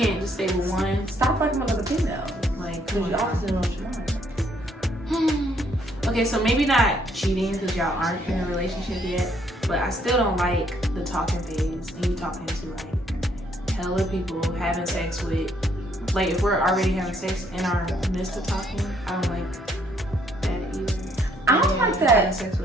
can't just stay with one. stop fucking with other females. Like, Because you obviously know what you want. Okay, so maybe not cheating because y'all aren't in a relationship yet, but I still don't like the talking phase and you talking to like hella people, having sex with, like if we're already having sex in our midst of talking, I don't like that either. I don't like that. Having sex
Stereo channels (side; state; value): both; normal; correlation 0.68